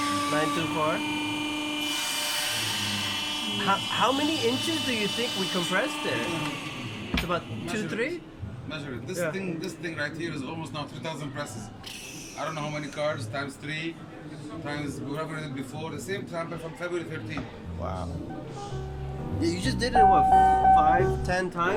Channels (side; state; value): both; identical; correlation 1.00